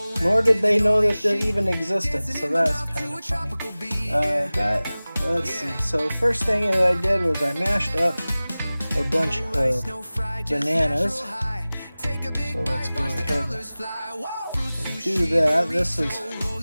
nor did they know that they even existed, so that's kind of funny. But let's see. So the first thing that I did was I mashed up a bunch of bananas. So let's go ahead and do that. This is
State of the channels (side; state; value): both; inverted; correlation -0.98